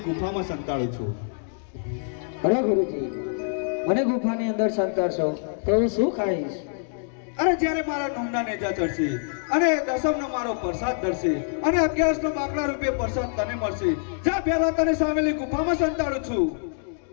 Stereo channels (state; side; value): silent; right; digital silence